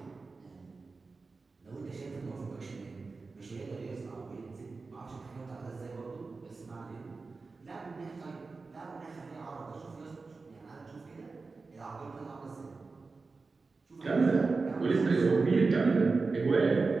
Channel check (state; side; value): quieter; left; 4.1 dB